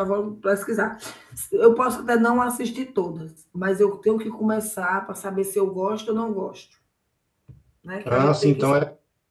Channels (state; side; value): identical; both; correlation 1.00